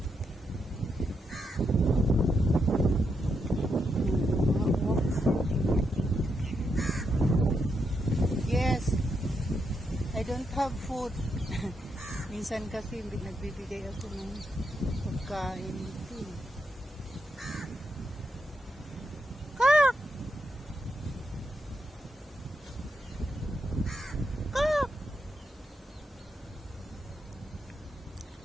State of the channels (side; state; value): both; normal; correlation 0.82